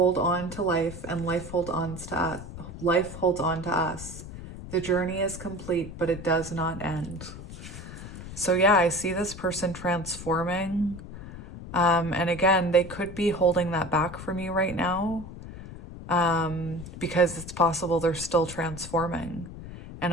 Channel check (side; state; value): left; noise; rumble, 12 dB below the sound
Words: on to life, and life holds on to us. The journey is complete, but it does not end. So yeah, I see this person transforming. And again, they could be holding that back from you right now. because it's possible they're still transforming.